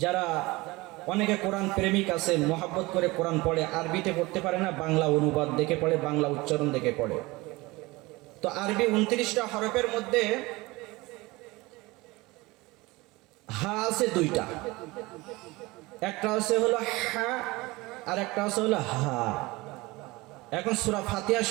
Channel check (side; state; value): left; quieter; 21.9 dB